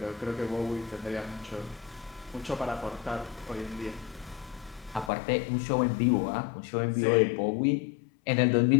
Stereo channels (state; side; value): drops out; right; at 5.1 s